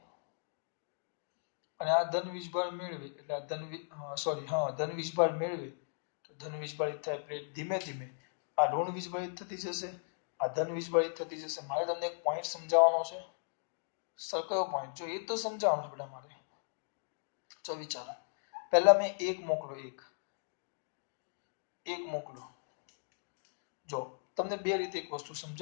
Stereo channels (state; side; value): silent; right; digital silence